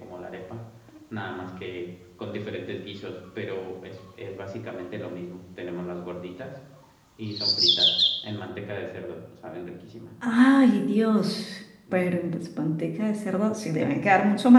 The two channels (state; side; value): identical; both; correlation 1.00